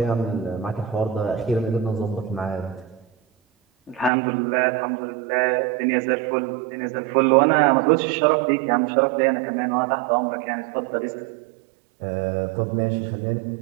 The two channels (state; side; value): drops out; left; at 4.1 s